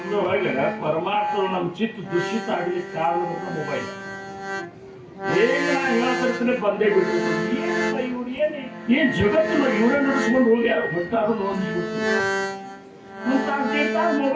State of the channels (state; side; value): identical; both; correlation 1.00